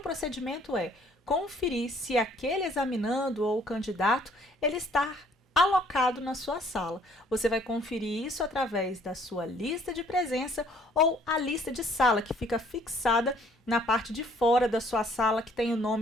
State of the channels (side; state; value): both; normal; correlation 0.61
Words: procedimento é conferir se aquele examinando ou candidato ele está alocado na sua sala. Você vai conferir isso através da sua lista de presença ou a lista de sala, que fica fixada na parte de fora da sua sala, que tem o